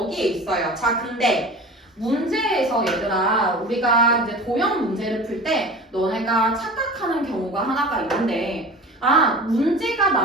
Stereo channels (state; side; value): normal; both; correlation 0.37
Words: 있어요. 자, 근데 문제에서 얘들아 우리가 이제 도형 문제를 풀 때 너네가 착각하는 경우가 하나가 있는데 문제가